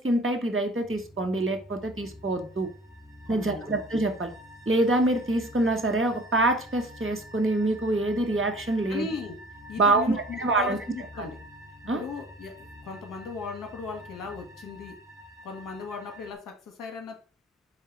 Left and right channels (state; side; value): normal; both; correlation 0.48